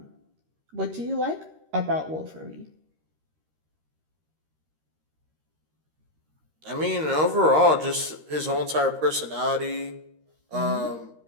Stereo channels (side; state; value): left; late; 13 ms